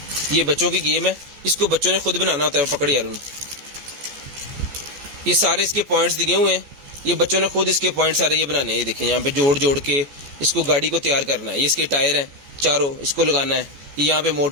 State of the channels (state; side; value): late; left; 14 ms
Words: ये बच्चों की गेम है, इसको बच्चों ने खुद बनाना होता है। पकड़ यार, ये सारे इसके पॉइंट्स दिए हुए हैं, ये बच्चों ने खुद इसके पॉइंट सारे ये बनाने हैं। ये देखें यहाँ पे जोड़ जोड़ के इसको गाड़ी को तैयार करना है। ये इसके टायर हैं चारों, इसको लगाना है। ये यहाँ पे